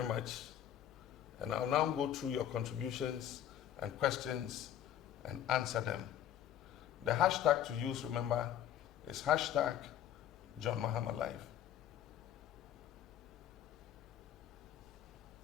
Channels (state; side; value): quieter; right; 10.9 dB